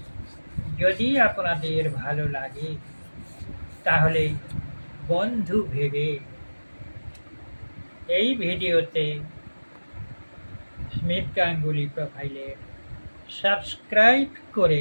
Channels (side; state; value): both; inverted; correlation -1.00